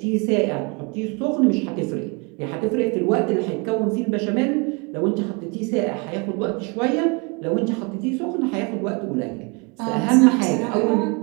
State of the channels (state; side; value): quieter; left; 30.1 dB